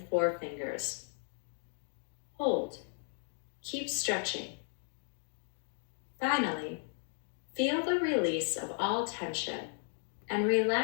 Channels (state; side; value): silent; right; 54 dB below the other